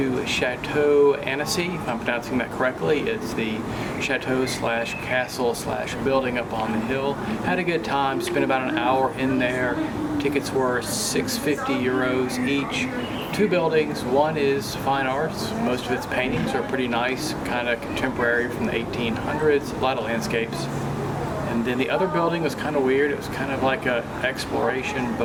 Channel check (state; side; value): identical; both; correlation 1.00